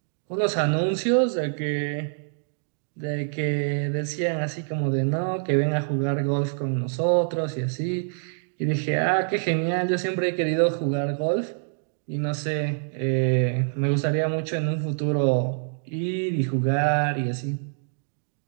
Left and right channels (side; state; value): left; silent; digital silence